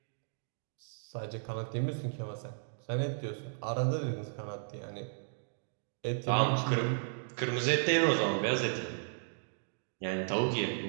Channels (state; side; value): silent; left; digital silence